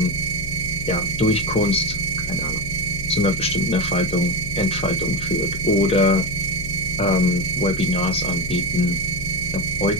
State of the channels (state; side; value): noise; left; hum, 11 dB below the sound